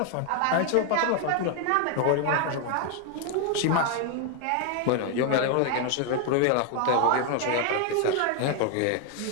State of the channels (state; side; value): different; both; correlation 0.01